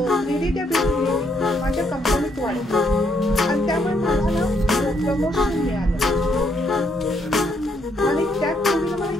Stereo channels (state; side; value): normal; both; correlation 0.73